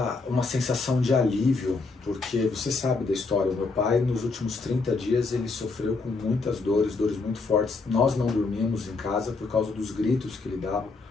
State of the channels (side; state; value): right; quieter; 4.0 dB